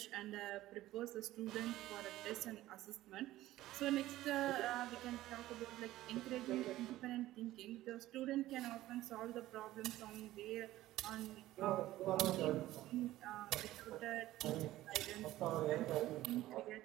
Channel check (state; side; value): quieter; left; 15.5 dB